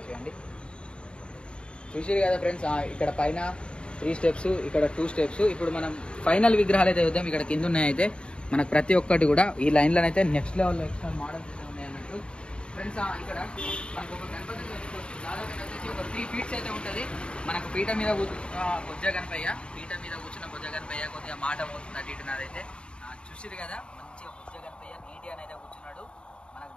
చూసిరు కదా ఫ్రెండ్స్. ఇక్కడ పైన 3 స్టెప్స్, ఇక్కడ 2 స్టెప్స్. ఇప్పుడు మనం ఫైనల్ విగ్రహాలు అయితే చూద్దాం. ఇక్కడ కింద ఉన్నాయి అయితే మనకు ప్రతి ఒక్కటి కూడా ఈ లైన్లో అయితే నెక్స్ట్ లెవెల్లో ఎక్స్ట్రా మోడల్స్ అయితే ఉన్నాయి అన్నట్టు ఫ్రెండ్స్. ఇక్కడ మనకు ఒక గణపతి చూసుకోవచ్చు. దాదాపు వచ్చేసి ఒక 3 ఫీట్స్ అయితే ఉంటుంది. మనకు పీట మీద బొజ్జ గణపయ్య, పీట మీద కూర్చున్న బొజ్జ గణపయ్య కొద్దిగా మాట పోతుంది అటు ఇటు నాదైతే చూసిరు కదా. మంచిగా బొజ్జ గణపయ్య నీటి అని అయితే కూర్చున్నాడు. మనకు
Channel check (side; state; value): right; late; 0.054 ms